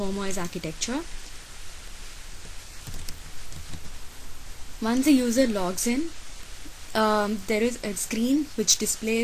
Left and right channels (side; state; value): both; identical; correlation 1.00